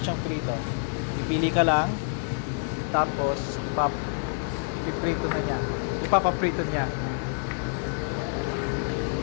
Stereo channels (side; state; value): right; silent; digital silence